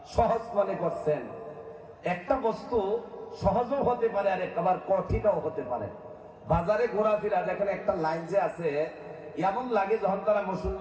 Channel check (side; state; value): both; identical; correlation 1.00